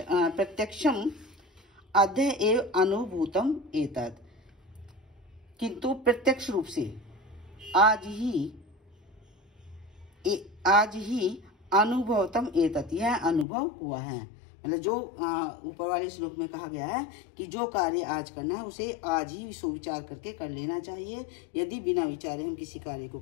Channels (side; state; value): right; drops out; at 13.5 s